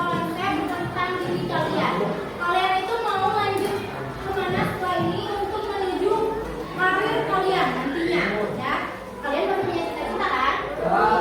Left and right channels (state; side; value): identical; both; correlation 1.00